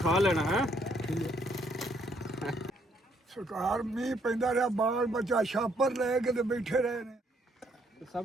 ਲੈਣਾ ਹੈ। ਸਰਕਾਰ ਮੀਂਹ ਪੈਂਦਾ ਰਿਹਾ, ਬਾਲ ਬੱਚਾ ਛਾਪਰ ਲੈ ਕੇ ਤੇ ਬੈਠੇ ਰਹੇ ਨੇ।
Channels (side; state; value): both; normal; correlation 0.69